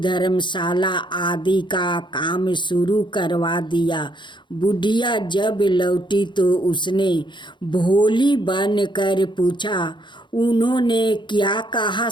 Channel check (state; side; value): late; right; 0.23 ms